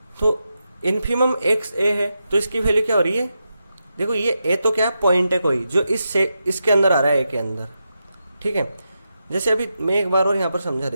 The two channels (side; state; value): both; inverted; correlation -0.87